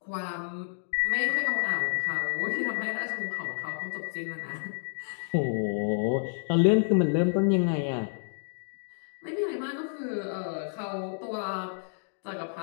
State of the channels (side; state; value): right; silent; digital silence